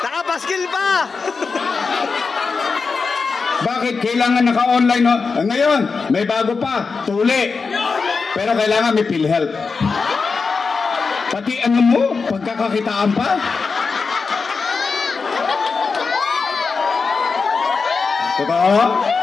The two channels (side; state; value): right; quieter; 4.7 dB